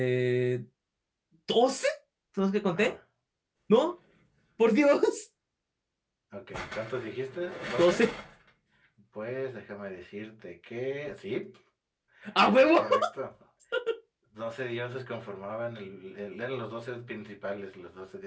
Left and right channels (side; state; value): both; identical; correlation 1.00